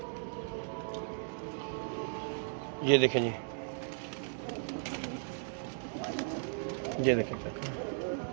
ये देखें जी, ये देखें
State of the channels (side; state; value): left; silent; digital silence